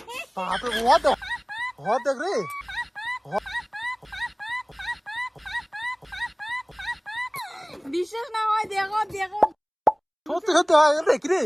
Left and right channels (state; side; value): identical; both; correlation 1.00